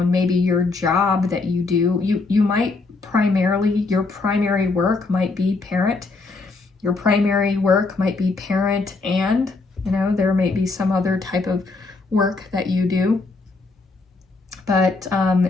and maybe your job that you do, you might your primary work might be parent. Your primary work might be parent, and there might be some other type of work that you do, but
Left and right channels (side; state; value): right; quieter; 3.7 dB